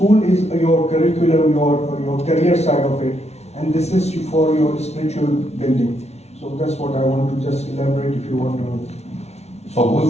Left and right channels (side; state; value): right; late; 0.31 ms